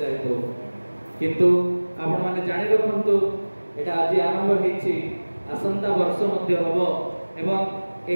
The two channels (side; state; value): both; inverted; correlation -1.00